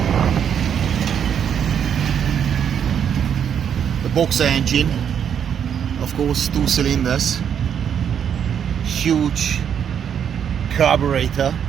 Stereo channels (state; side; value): quieter; left; 8.3 dB